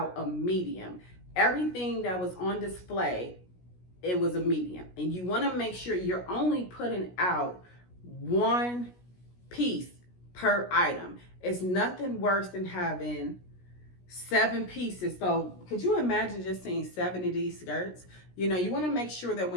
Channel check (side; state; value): right; late; 17 ms